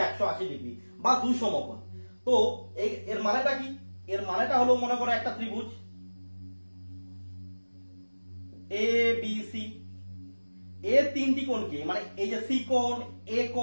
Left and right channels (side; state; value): both; inverted; correlation -1.00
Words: 180 ডিগ্রি বা দুই সমকোণ। তো এর মানেটা কি? এর মানেটা হলো, মনে করো একটা ত্রিভুজ এ বি সি, এর তিনটি কোণকে, মানে এই যে সি কোণ, এ